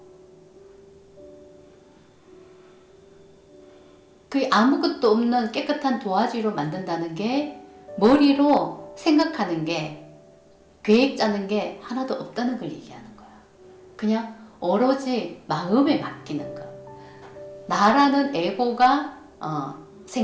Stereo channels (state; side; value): identical; both; correlation 1.00